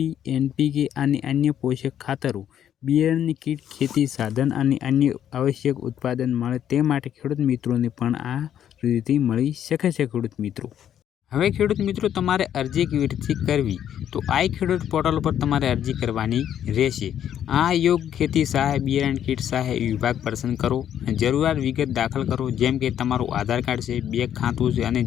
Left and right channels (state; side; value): quieter; right; 10.0 dB